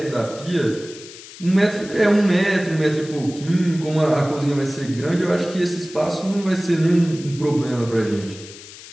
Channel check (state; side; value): noise; left; hiss, 17 dB below the sound